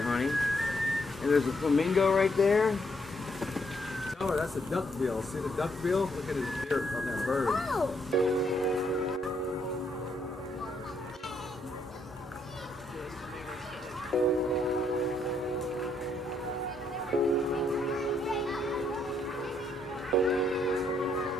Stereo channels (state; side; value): normal; both; correlation 0.73